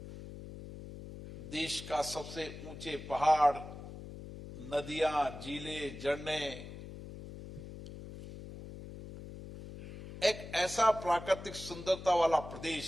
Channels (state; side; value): noise; left; hum, 12 dB below the sound